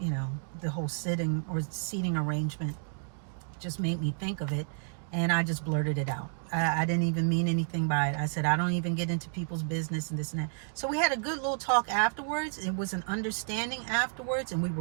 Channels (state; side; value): silent; left; 57 dB below the other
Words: whole sitting or seating arrangement. Just made me think of it, and I just blurted it out. I didn't even mean anything by it. I said, I don't even get into people's business and this and that. So we had a good little talk afterwards. It was an understanding afterwards, and we